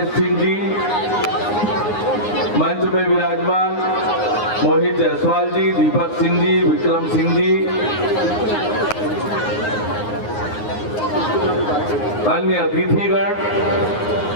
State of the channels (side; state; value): right; late; 9.6 ms